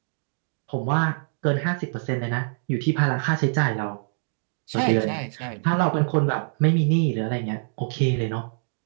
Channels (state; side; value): silent; left; digital silence